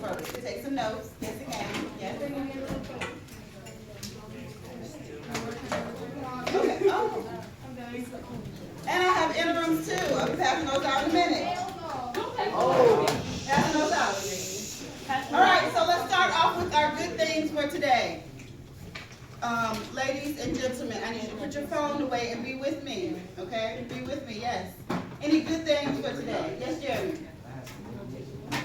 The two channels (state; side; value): identical; both; correlation 1.00